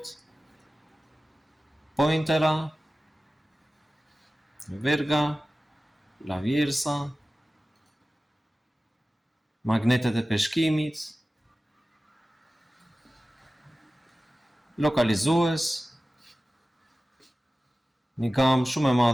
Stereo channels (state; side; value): normal; both; correlation 0.96